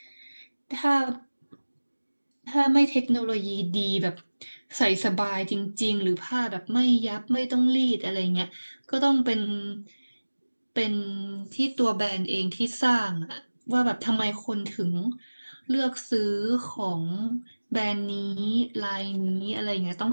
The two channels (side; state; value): both; inverted; correlation -1.00